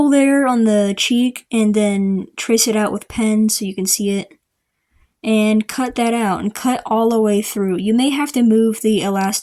there on the cheek, and then trace it out with pen so you can see it. And cut that out, and cut all the way through. You may have to move the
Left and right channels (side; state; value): both; identical; correlation 1.00